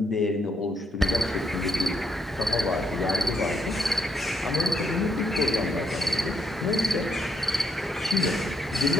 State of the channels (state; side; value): normal; both; correlation 0.75